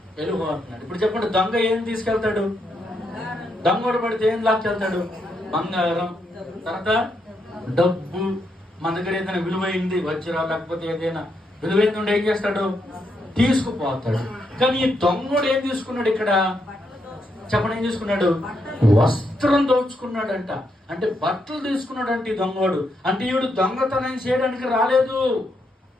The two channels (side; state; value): both; normal; correlation 0.79